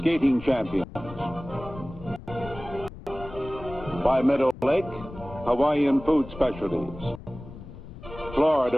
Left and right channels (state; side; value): noise; left; rumble, 15 dB below the sound